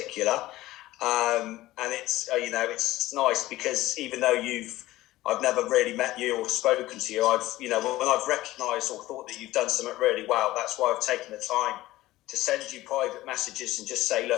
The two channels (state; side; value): quieter; right; 16.9 dB